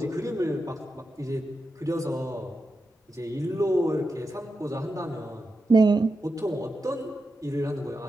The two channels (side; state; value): both; normal; correlation 0.89